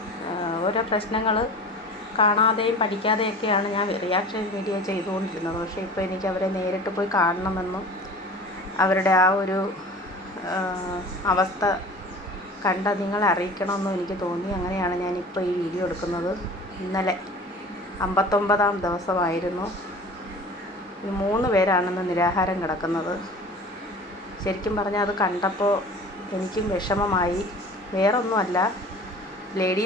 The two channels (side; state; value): both; normal; correlation 0.40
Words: ഓരോ പ്രശ്നങ്ങൾ കാണാതെയും പഠിക്കാതെയൊക്കെയാണ് ഞാൻ റിയാക്ഷൻ വീഡിയോ ചെയ്തുകൊണ്ടിരുന്നത്. പക്ഷേ ഇപ്പോൾ എനിക്ക് അവരെ നേരിട്ട് പോയി കാണണമെന്നും അവരുടെ ആ ഒരു അവസ്ഥ കണ്ട നിങ്ങളെ അറിയിക്കണമെന്നും എനിക്ക് തോന്നി. അങ്ങനെയാണ് ഞാനിപ്പോൾ ഈ വീഡിയോ എടുക്കുന്നത്. ഇന്നലെ 59ാം ദിവസമായിരുന്നു. ഈ 3 പേരാണെന്ന് നിരാഹാരം കിടക്കുന്നത്. ശരിക്കും പറഞ്ഞാൽ അത് കണ്ടപ്പോൾ എനിക്കും വിഷമമായി. വേറൊന്നുമല്ല,